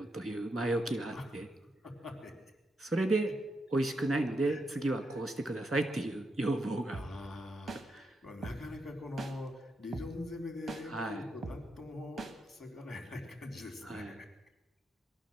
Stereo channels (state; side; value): normal; both; correlation 0.82